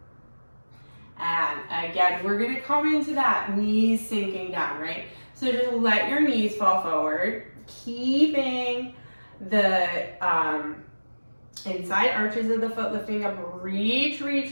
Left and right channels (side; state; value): both; inverted; correlation -1.00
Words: And again, we're gonna come into that knees sinking down, right? So just let your knees fall forward, keeping the inside arches of the foot lifting up. Reach,